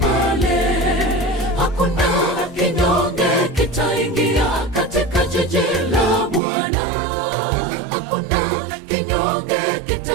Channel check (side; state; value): left; drops out; at 6.4 s